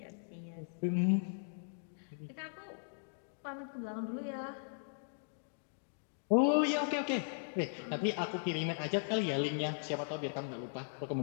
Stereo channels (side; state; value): right; silent; digital silence